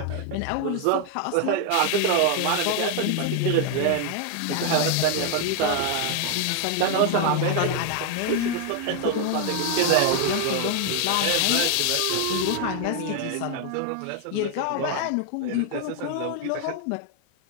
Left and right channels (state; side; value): different; both; correlation 0.00